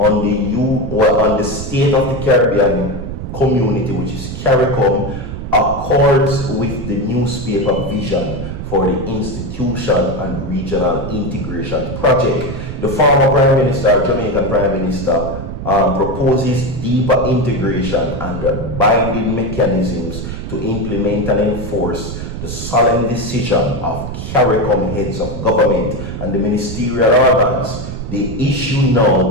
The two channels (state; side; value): noise; right; rumble, 7 dB below the sound